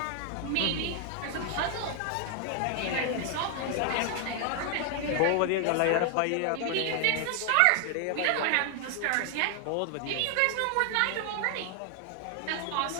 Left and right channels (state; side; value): different; both; correlation 0.00